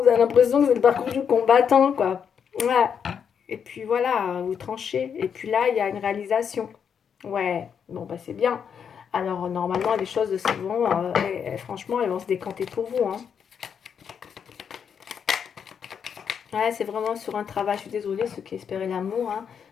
avez l'impression que c'est le parcours du combattant, quoi. Ouais. Et puis voilà, vous tranchez. Et puis là, il y a une réalisation. Ouais, bon, bah c'est bien. Alors, normalement, les choses se vont, franchement, elles vont se décanter pour vous, hein. Ouais, c'est vraiment sur un travail. Je suis désolée, ceux qui espéraient l'amour, hein.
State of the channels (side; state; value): right; quieter; 7.3 dB